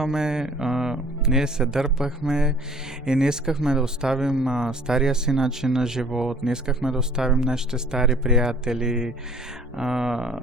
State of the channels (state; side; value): normal; both; correlation 0.53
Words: ние се дърпахме и не искахме да оставим стария си начин на живот, не искахме да оставим нашите стари приятели.